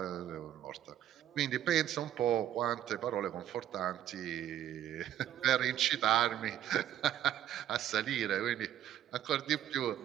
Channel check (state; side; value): quieter; left; 11.4 dB